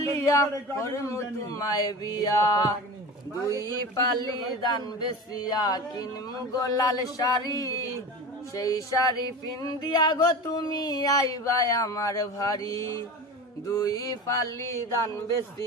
করমু তোমায় বিয়া। দুই পালি দান বেসিয়া কিনমু গোলাল শাড়ি, সেই শাড়ি পিন্দিয়া গো তুমি আইবাই আমার ভারি। দুই পালি দান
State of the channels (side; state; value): both; normal; correlation 0.31